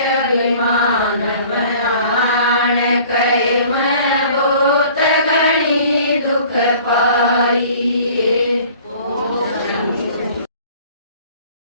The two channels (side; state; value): both; inverted; correlation -0.50